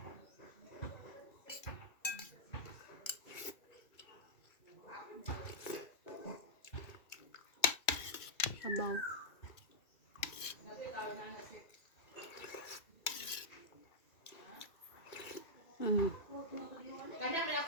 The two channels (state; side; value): late; right; 2.3 ms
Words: Sabaw. Kadang na